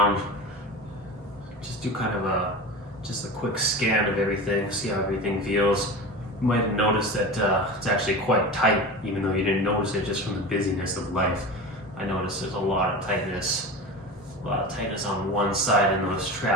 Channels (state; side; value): normal; both; correlation 0.29